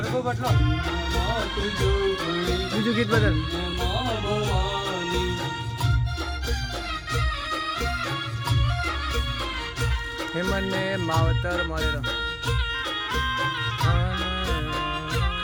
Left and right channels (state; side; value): identical; both; correlation 1.00